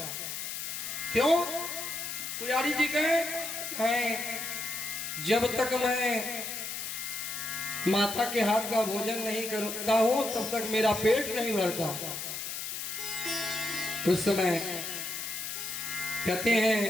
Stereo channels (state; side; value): noise; left; hiss, 5 dB below the sound